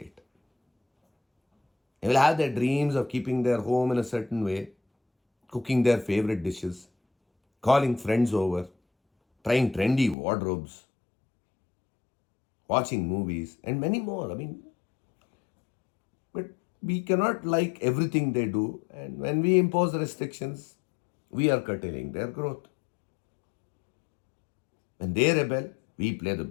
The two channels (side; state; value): right; drops out; at 10.2 s